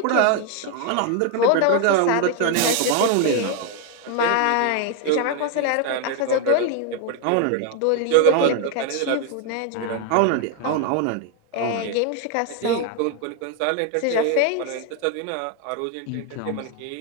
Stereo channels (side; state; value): both; different; correlation 0.01